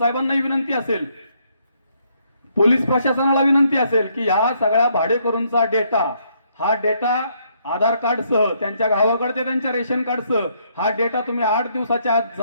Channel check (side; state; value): both; inverted; correlation -0.71